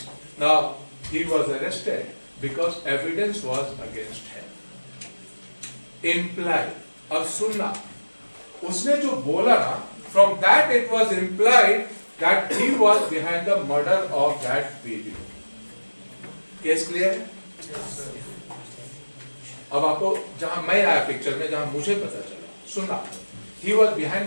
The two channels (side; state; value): both; inverted; correlation -1.00